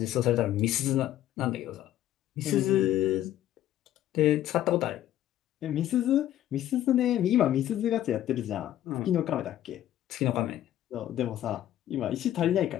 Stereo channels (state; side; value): quieter; right; 12.6 dB